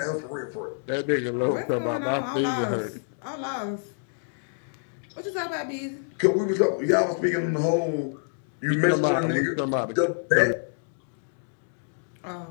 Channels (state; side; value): silent; right; digital silence